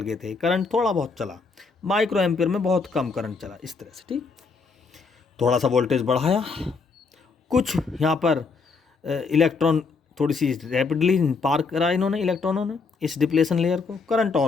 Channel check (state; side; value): quieter; right; 4.6 dB